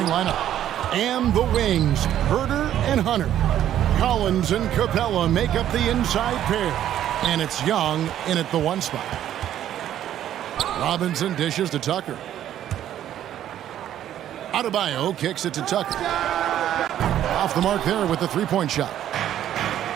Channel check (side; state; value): left; quieter; 11.4 dB